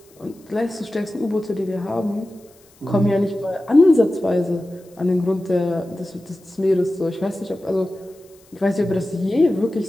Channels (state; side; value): noise; left; hiss, 29 dB below the sound